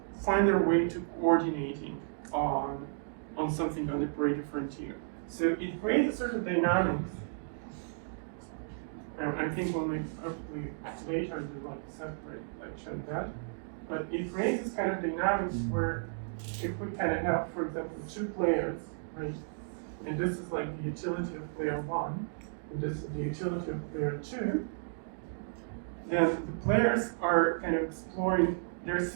find their way to coordinating on something on the Pareto frontier. So it creates a sort of dynamics. I think we'll make hopefully later do like a separate lecture on that. But it creates this kind of dynamics where if we kind of have, for example, two players, right? And this is like the utility of player one, and this is the utility of player two, then the players are kind of exploring, they're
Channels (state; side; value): silent; left; digital silence